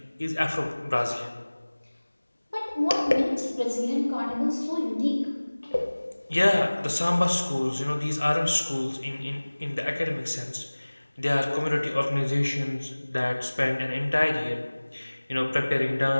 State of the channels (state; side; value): inverted; both; correlation -1.00